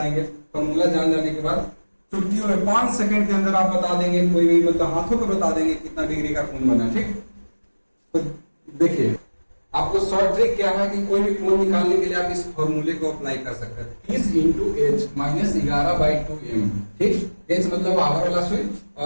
फॉर्मूला जान जाने के बाद चुटकियों में 5 सेकंड के अंदर आप बता देंगे, कोई भी मतलब हाथों पर बता देंगे कितना डिग्री का कोण बना, ठीक। तो देखिए आपको शॉर्ट ट्रिक क्या है कि कोई भी कोण निकालने के लिए आप इस फॉर्मूले को अप्लाई कर सकते हैं, 30 इंटू h माइनस 11/2m, ठीक। h मतलब आवर वाला सुई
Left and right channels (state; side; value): inverted; both; correlation -1.00